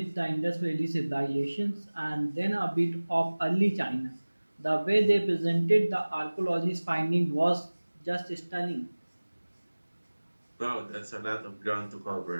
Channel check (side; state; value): both; inverted; correlation -1.00